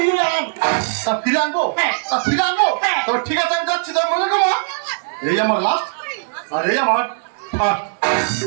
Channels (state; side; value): silent; left; digital silence